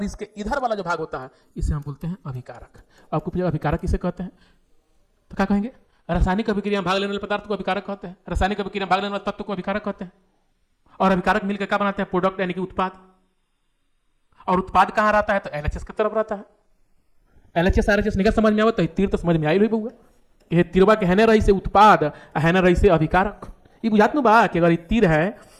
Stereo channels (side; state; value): both; identical; correlation 1.00